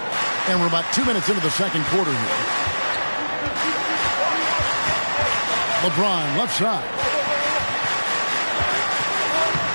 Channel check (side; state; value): both; inverted; correlation -1.00